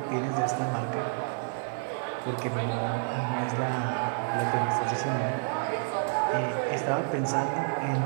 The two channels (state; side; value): silent; left; 58 dB below the other